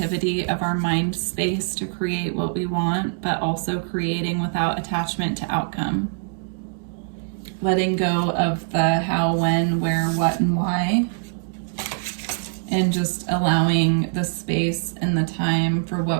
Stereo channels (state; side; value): silent; left; 63 dB below the other